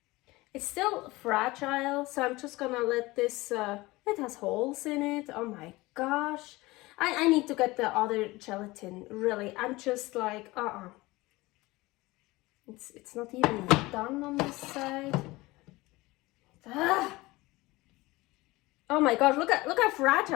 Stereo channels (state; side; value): quieter; right; 20.8 dB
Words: it's still fragile, so I'm just gonna let this, it has holes in it. Oh my gosh. I need to get the other gelatin, really. I'm just like, It's not even done on this side. Oh my gosh, look how